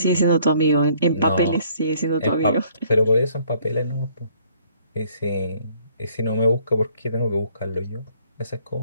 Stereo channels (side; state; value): both; inverted; correlation -0.62